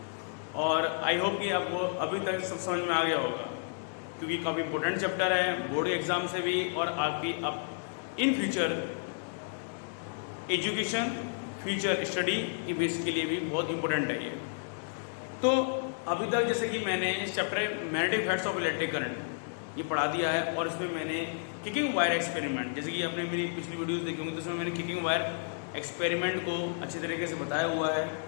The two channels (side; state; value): right; silent; digital silence